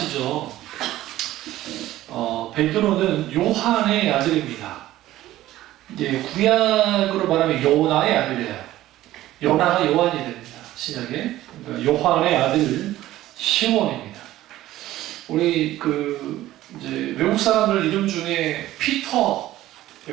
베드로는 요한의 아들입니다. 이제 구약으로 말하면 요나의 아들이에요. 요나가 요한이 됩니다. 신약에. 그러니까 요한의 아들 시몬입니다. 우리 이제 외국 사람들 이름 중에 피터,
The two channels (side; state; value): left; quieter; 14.9 dB